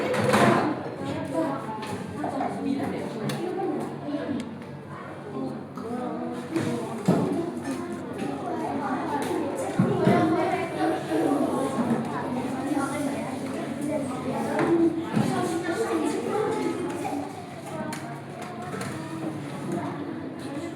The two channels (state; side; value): identical; both; correlation 1.00